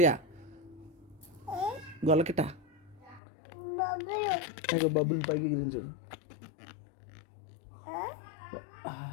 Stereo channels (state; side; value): drops out; right; at 3.2 s